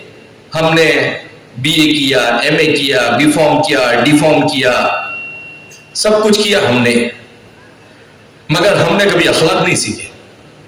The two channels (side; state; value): both; identical; correlation 1.00